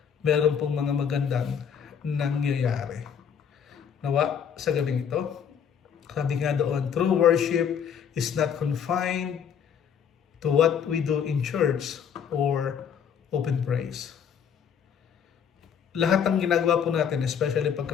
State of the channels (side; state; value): right; quieter; 7.7 dB